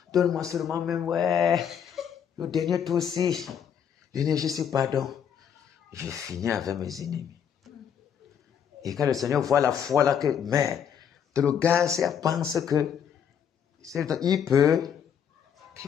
Donne-moi seulement même, ouais. Le dernier tour aussi. L'énergie, c'est pardon. Je finis avec mes ennemis. Et quand le Seigneur voit la foi là que, mais, le gars, pense que, il peut,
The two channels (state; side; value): quieter; right; 8.2 dB